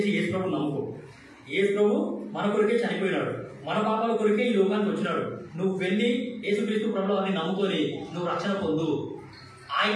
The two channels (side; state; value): both; identical; correlation 1.00